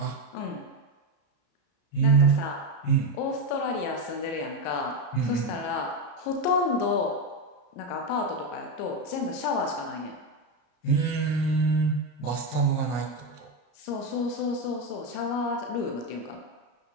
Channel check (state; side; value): late; right; 34 ms